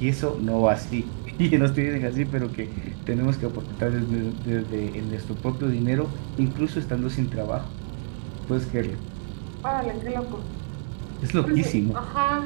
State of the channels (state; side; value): silent; left; digital silence